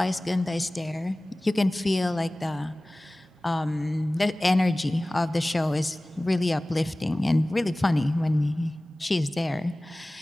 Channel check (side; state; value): both; normal; correlation 0.98